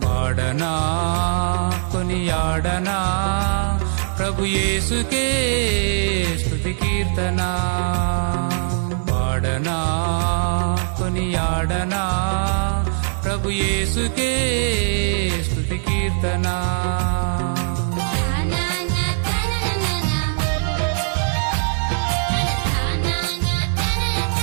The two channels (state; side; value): silent; left; digital silence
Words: పాడనా కొనియాడనా ప్రభు యేసుకే స్తుతి కీర్తన పాడనా కొనియాడనా ప్రభు యేసుకే స్తుతి కీర్తన